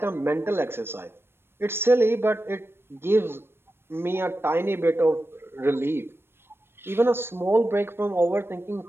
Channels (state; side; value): late; left; 0.12 ms